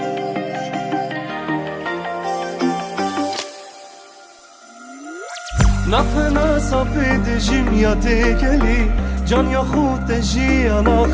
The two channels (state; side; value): identical; both; correlation 1.00